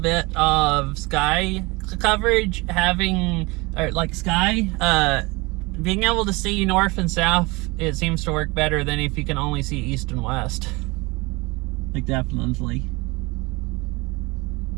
of sky coverage, having or like sky, being able to see north and south, it seems to work better than if you can only see east and west. Like definitely.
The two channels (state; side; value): quieter; left; 24.8 dB